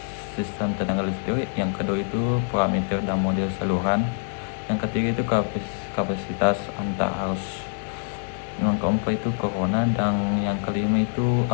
sistem tenaga listrik, yang kedua itu parameter dan model saluran, yang ketiga itu kapasitas antar arus, yang keempat itu corona, dan yang kelima itu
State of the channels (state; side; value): silent; right; 62 dB below the other